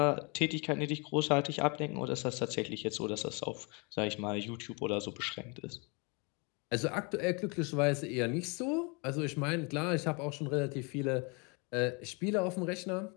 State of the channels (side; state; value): right; quieter; 31.5 dB